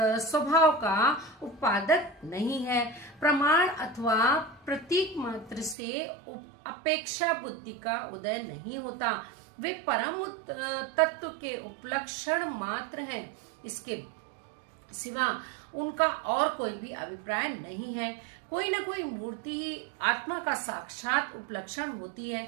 का उत्पादक नहीं है। प्रमाण अथवा प्रतीक मात्र से अपेक्षा बुद्धि का उदय नहीं होता। वे परम तत्व के उपलक्षण मात्र हैं। सिवा उनका और कोई भी अभिप्राय नहीं है। कोई न कोई मूर्ति ही आत्मा का साक्षात उपलक्षण होती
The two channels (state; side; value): drops out; left; at 5.8 s